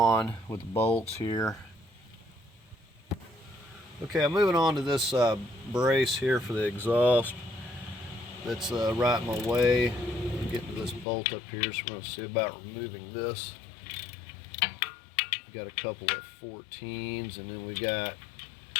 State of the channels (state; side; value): drops out; right; at 11.1 s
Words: with the bolts here. Okay, I'm moving on to this brace here for the exhaust that's right in my way. I'm getting to this bolt up here, so we're going to see about removing this. We've got a couple of 14s, and then we got